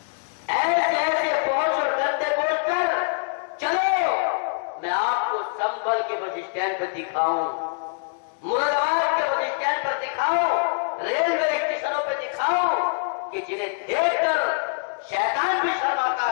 ایسے ایسے پہنچ اور گندے بول کر چلو میں آپ کو سنبھل کے بس اسٹینڈ پر دکھاؤں، مراد آباد کے بس اسٹینڈ پر دکھاؤں، ریلوے اسٹیشنوں پہ دکھاؤں کہ جنہیں دیکھ کر شیطان بھی شرماتا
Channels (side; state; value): right; silent; digital silence